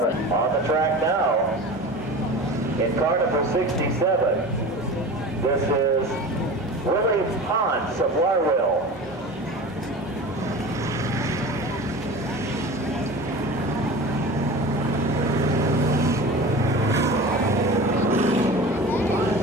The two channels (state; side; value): normal; both; correlation 0.34